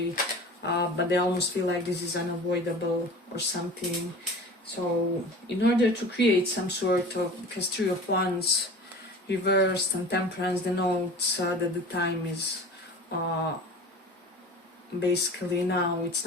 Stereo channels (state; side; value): normal; both; correlation 0.39